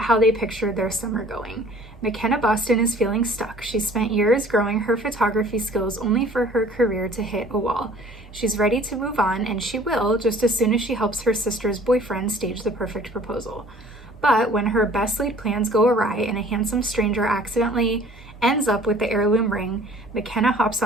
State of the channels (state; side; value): normal; both; correlation 0.51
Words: how they pictured their summer going. McKenna Boston is feeling stuck. She spent years growing her photography skills only for her career to hit a wall. She's ready to move on, and she will just as soon as she helps her sister's boyfriend stage the perfect proposal. But when her best laid plans go awry and a handsome stranger accidentally ends up with the heirloom ring, McKenna hops